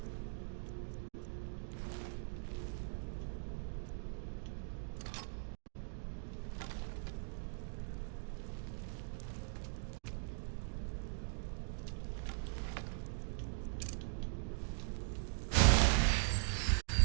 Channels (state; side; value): silent; left; digital silence